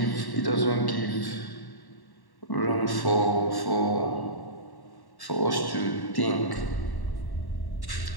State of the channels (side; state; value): right; late; 1.1 ms